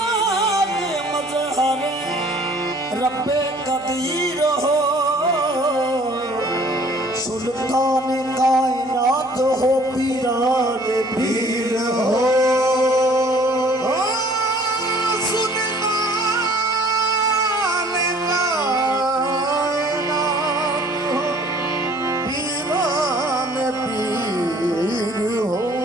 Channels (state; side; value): noise; right; hum, 26 dB below the sound